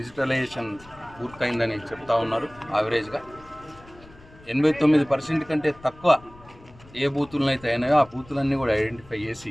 పూర్తయిందని చెప్తా ఉన్నారు. యావరేజ్గా 89% కంటే తక్కువ ఏ బూతులను అయితే అయినాయో ఆ బూతులన్నీ కూడా ఐడెంటిఫై చేసి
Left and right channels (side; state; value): left; noise; rumble, 23 dB below the sound